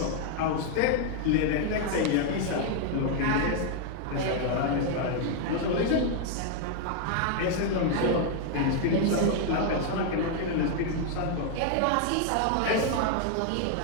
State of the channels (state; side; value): different; both; correlation 0.00